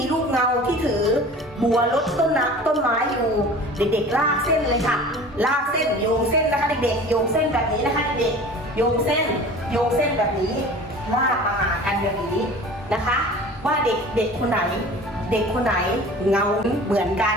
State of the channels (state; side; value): normal; both; correlation 0.41